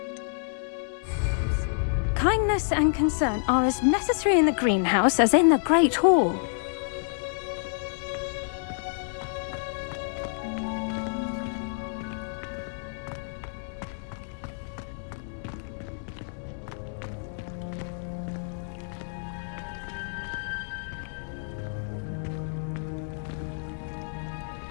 Kindness and concern are as necessary in the greenhouse as in the Great Hall.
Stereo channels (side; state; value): right; silent; digital silence